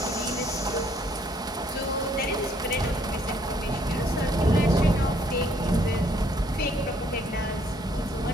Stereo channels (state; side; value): normal; both; correlation 0.65